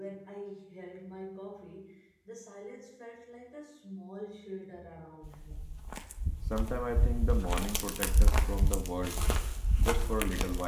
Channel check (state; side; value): identical; both; correlation 1.00